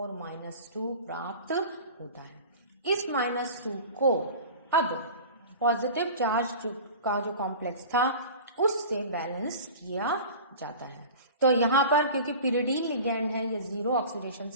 -2 प्राप्त होता है। इस -2 को अब पॉजिटिव चार्ज का जो कॉम्प्लेक्स था उससे बैलेंस किया जाता है। तो यहाँ पर क्योंकि पिरिडीन लिगेंड है, ये 0 ऑक्सीडेशन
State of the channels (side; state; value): both; inverted; correlation -0.37